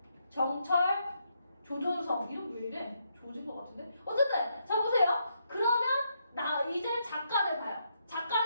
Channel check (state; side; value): inverted; both; correlation -0.78